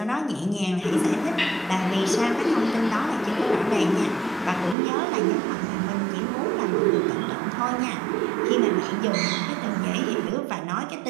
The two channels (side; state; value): left; drops out; at 4.8 s